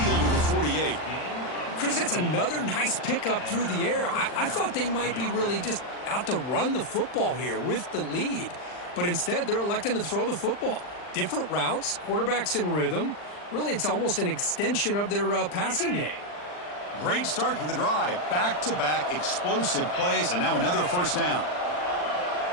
to the 48. Chris, that's another nice pickup through the air. I thought they might be really just out to run the football here with the lead. But instead, they're electing to throw the football. Different routes, quarterbacks in rhythm. Really, it's almost an extension of their passing game. Great start to the drive. Back-to-back explosive plays, and now another first down.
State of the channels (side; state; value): right; late; 40 ms